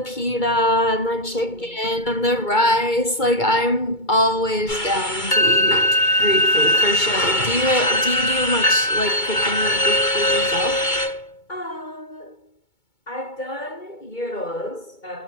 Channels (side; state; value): right; late; 2.2 ms